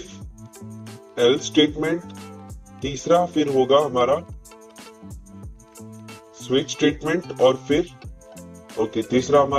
एल्स स्टेटमेंट, तीसरा फिर होगा हमारा स्विच स्टेटमेंट, और फिर तीसरा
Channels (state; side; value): identical; both; correlation 1.00